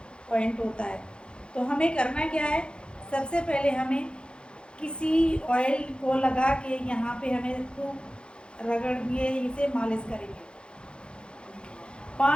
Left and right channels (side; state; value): right; late; 0.054 ms